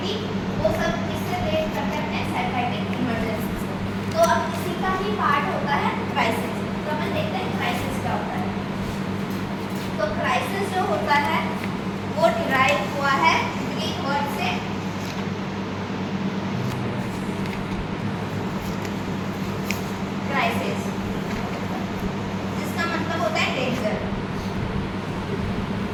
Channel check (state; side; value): identical; both; correlation 1.00